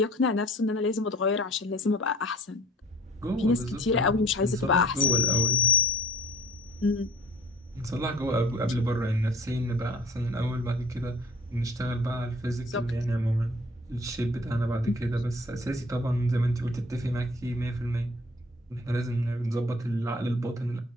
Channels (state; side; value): normal; both; correlation 0.50